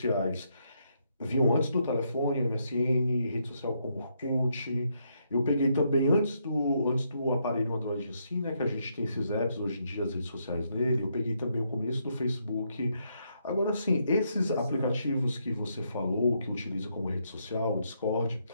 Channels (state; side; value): inverted; both; correlation -0.77